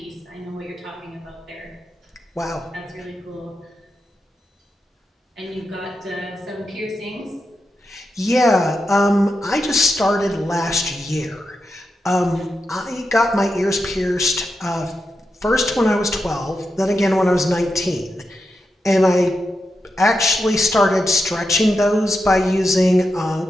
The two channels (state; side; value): normal; both; correlation 0.87